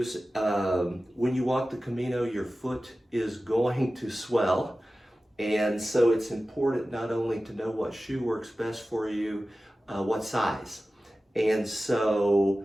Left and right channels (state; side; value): normal; both; correlation 0.96